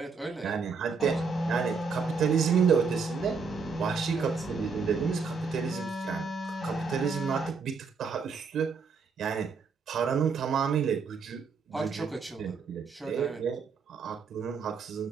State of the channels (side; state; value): left; quieter; 5.2 dB